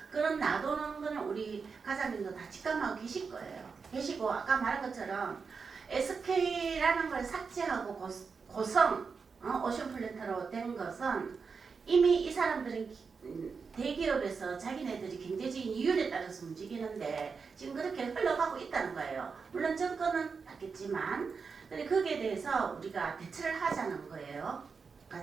그런 놔두는 거는 우리 가장님도 다 직감하고 계실 거예요. 계시고 아까 말한 것처럼 SK라는 걸 삭제하고 고성 오션 플랜트로 된 것은 이미 이 사람들은 대기업에서 자기네들이 경제적인 이윤에 따라서 움직이는데 지금 그렇게 흘러가고 있다는 거예요. 물론 정권은 바뀌었지만 거기에 대해서 우리가 대처를 하자는 거예요.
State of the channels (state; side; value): quieter; left; 5.3 dB